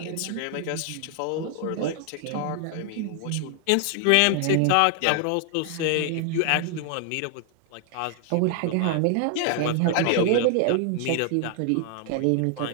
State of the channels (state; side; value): different; both; correlation 0.00